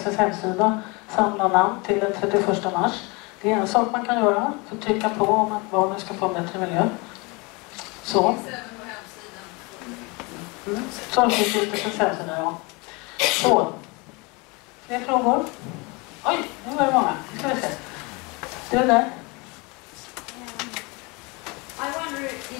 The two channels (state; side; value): quieter; right; 27.6 dB